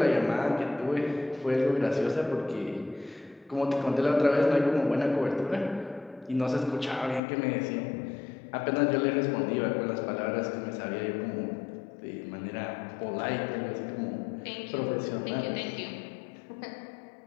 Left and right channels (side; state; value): right; drops out; at 7.2 s